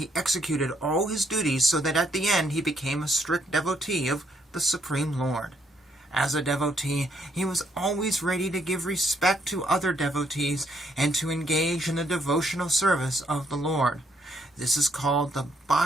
executed all his duties so that at the end he became a strict devotee of the Supreme Lord. As a devotee, he was always ready to give respect to other devotees and to engage in the devotional service of the Lord. This is called the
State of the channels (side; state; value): both; normal; correlation 0.72